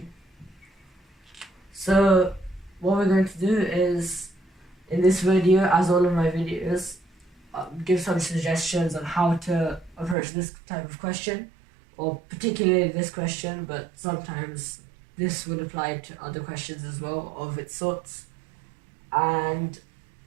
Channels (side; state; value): left; drops out; at 10.2 s